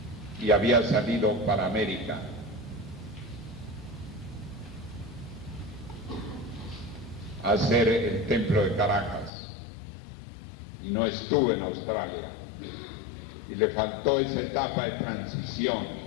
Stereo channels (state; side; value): drops out; right; at 9.3 s